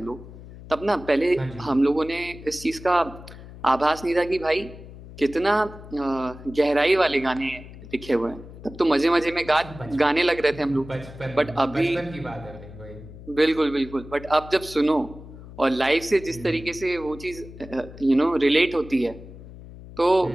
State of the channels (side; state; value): left; noise; hum, 16 dB below the sound